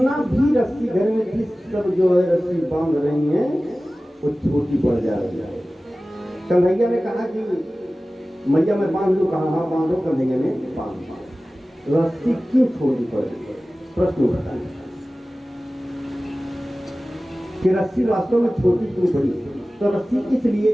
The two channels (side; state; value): both; normal; correlation 0.97